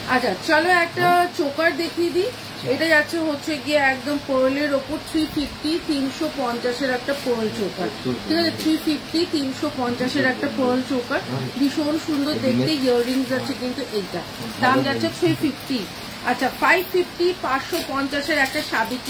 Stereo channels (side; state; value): both; identical; correlation 1.00